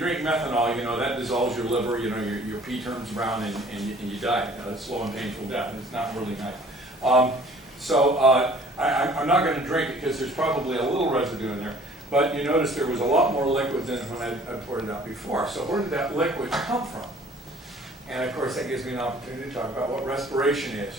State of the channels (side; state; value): both; normal; correlation 0.53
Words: methanol, that dissolves your liver, your pee turns brown and you die. It's slow and painful death, and it's not really nice. I'm not going to drink it because there's probably a little residue in there. But you notice there was a lot more liquid than when I poured it out before. So where did that liquid come from? And of course that gives me an opportunity to talk about what respiration is.